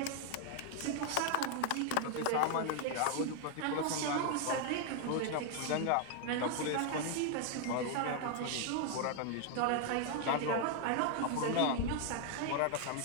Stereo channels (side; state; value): both; different; correlation 0.00